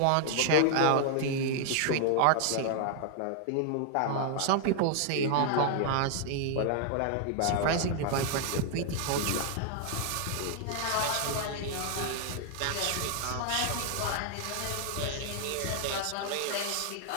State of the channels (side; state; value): both; different; correlation 0.00